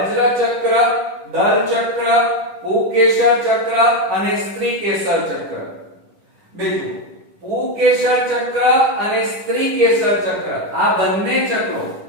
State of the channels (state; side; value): late; left; 10 ms